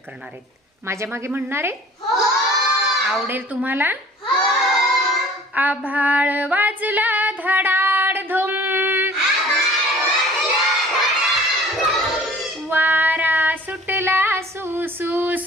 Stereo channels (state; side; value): normal; both; correlation 0.49